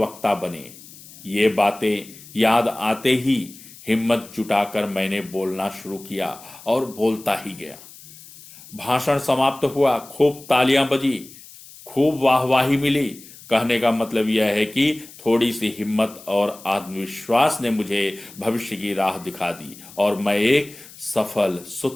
बने। ये बातें याद आते ही हिम्मत जुटाकर मैंने बोलना शुरू किया और बोलता ही गया। भाषण समाप्त हुआ, खूब तालियां बजी, खूब वाहवाही मिली। कहने का मतलब यह है कि थोड़ी सी हिम्मत और आत्मविश्वास ने मुझे भविष्य की राह दिखा दी और मैं एक सफल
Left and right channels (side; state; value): left; noise; hiss, 19 dB below the sound